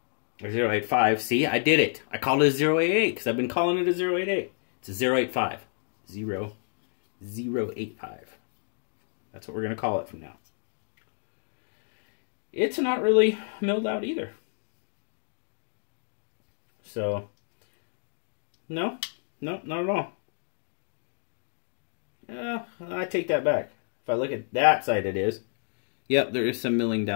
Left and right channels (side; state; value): right; silent; 59 dB below the other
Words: Or 085. See, I did it. I called it a 088 because I've been calling it a 088. It's a 085. 085. That's what we're going to call it from now. It's not really milled out either. So, no, not at all. I take that back. If I look at that side, it is. Yep, there is some milling